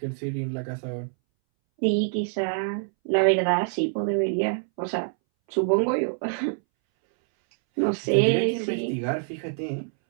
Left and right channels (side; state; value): left; silent; 61 dB below the other